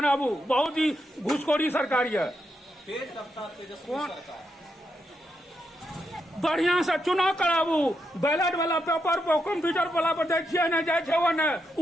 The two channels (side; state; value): both; normal; correlation 0.82